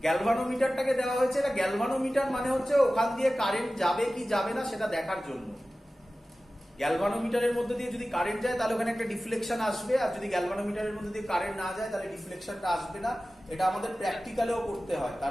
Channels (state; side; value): normal; both; correlation 0.96